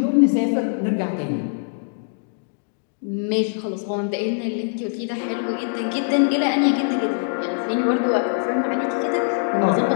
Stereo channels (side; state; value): right; silent; digital silence